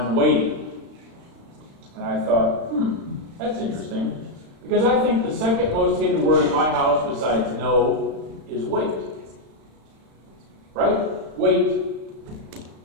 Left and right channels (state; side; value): late; left; 35 ms